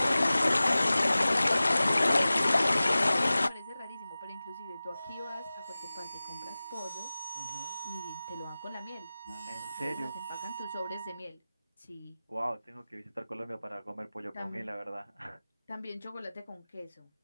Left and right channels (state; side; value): inverted; both; correlation -0.97